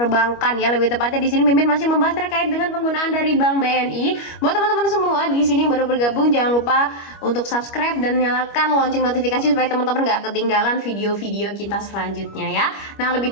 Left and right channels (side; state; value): right; late; 25 ms